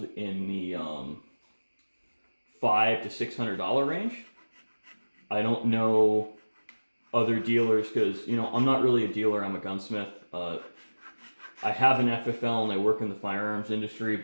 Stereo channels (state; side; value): inverted; both; correlation -1.00